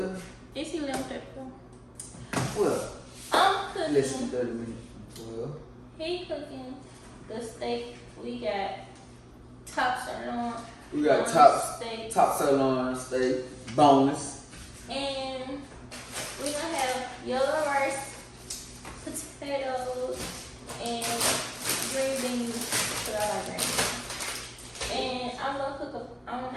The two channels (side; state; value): both; identical; correlation 1.00